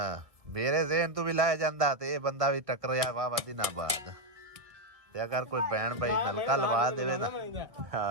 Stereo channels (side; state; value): left; late; 1.7 ms